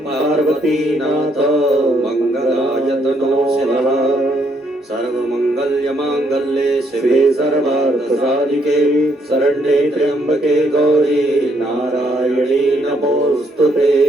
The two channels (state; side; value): normal; both; correlation 0.72